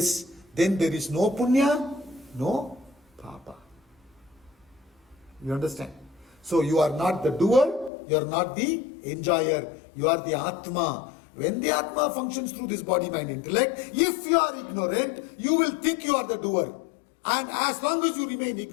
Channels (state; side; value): drops out; right; at 7.9 s